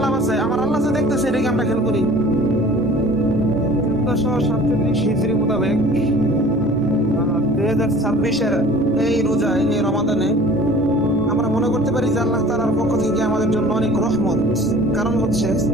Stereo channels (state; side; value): normal; both; correlation 0.47